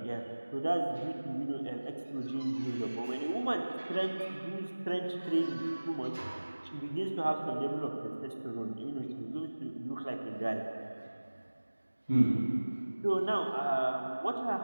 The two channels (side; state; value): both; inverted; correlation -1.00